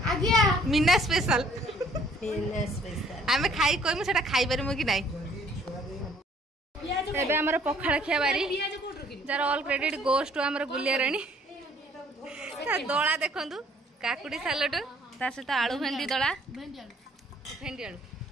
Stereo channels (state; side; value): normal; both; correlation 0.60